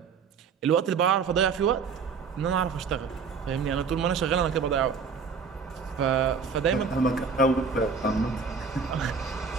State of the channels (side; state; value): left; quieter; 5.6 dB